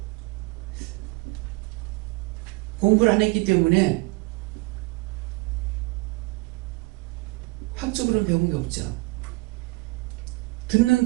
공부를 안 했기 때문에 학적으로는 배운 게 없죠. 듣는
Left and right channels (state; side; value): quieter; left; 24.0 dB